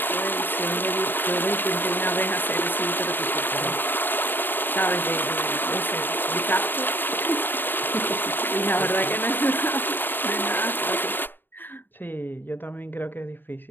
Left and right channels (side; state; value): right; late; 0.094 ms